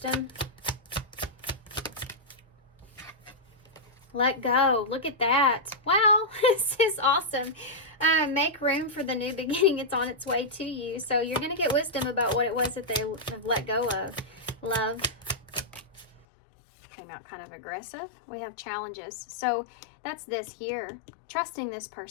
Let go. Look at that. Wow, this is awesome. Make room for the new beginning. It's on its way to you. So you're going to get wisdom about what it was that they have let go of. Love. Came out kind of aggressive. We have challenges. So that's this here. Trusting this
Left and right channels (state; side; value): drops out; right; at 16.2 s